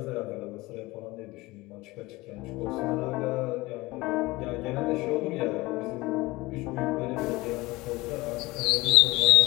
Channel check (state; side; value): quieter; right; 21.0 dB